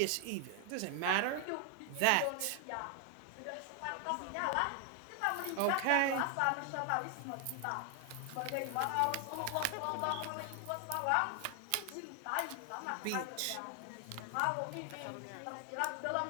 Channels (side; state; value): both; different; correlation 0.00